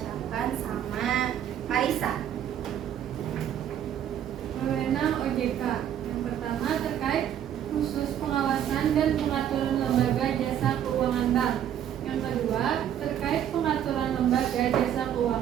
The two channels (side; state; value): left; quieter; 10.1 dB